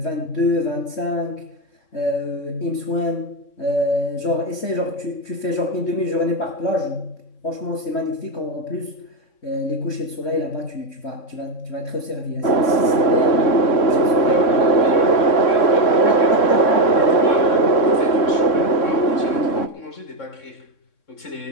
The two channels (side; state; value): right; late; 3.6 ms